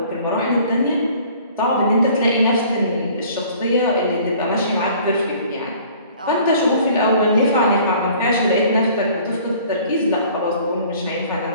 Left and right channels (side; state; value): both; inverted; correlation -0.52